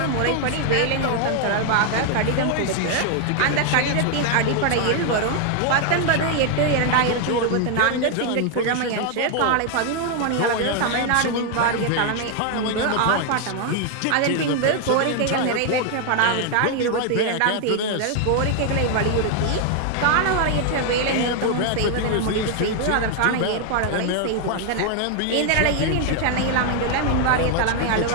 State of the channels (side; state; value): both; different; correlation 0.00